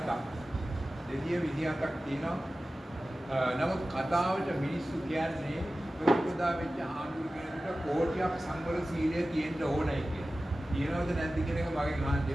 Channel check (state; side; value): normal; both; correlation 0.95